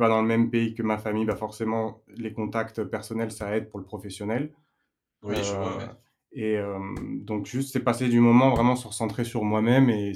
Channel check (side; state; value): both; identical; correlation 1.00